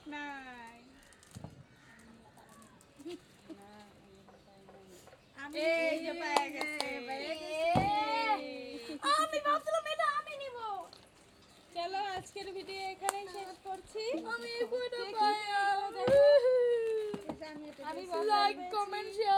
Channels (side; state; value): both; identical; correlation 1.00